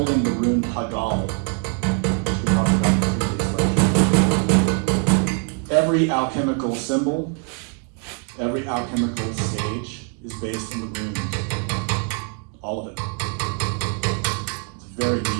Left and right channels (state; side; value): quieter; left; 39.8 dB